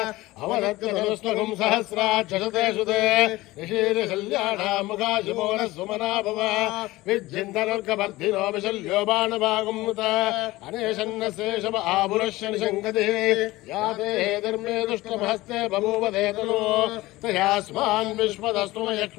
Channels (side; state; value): right; quieter; 19.0 dB